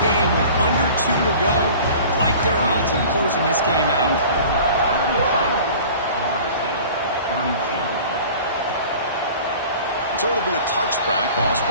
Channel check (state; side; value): inverted; both; correlation -0.43